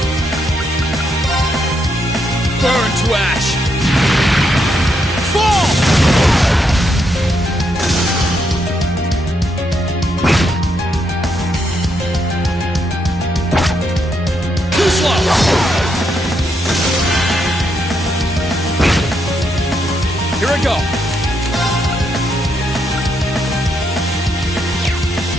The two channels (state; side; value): normal; both; correlation 0.78